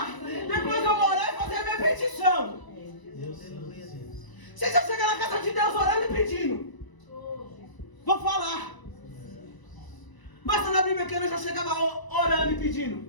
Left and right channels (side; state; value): right; late; 1.0 ms